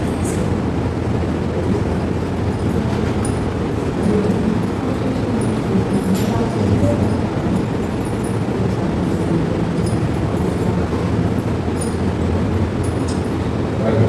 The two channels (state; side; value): identical; both; correlation 1.00